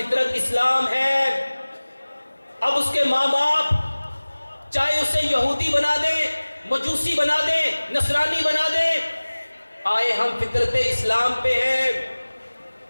इस्लाम है। अब उसके माँ बाप चाहे उसे यहूदी बना दें, मजूसी बना दें, नसरानी बना दें, आए हम फितरत इस्लाम पे हैं।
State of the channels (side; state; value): both; inverted; correlation -1.00